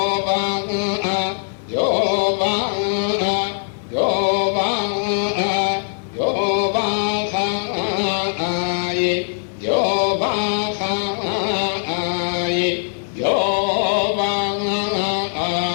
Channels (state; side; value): silent; right; digital silence